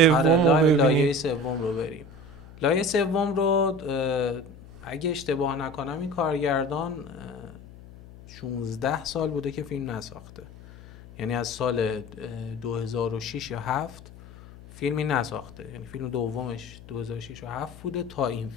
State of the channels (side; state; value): left; noise; hum, 18 dB below the sound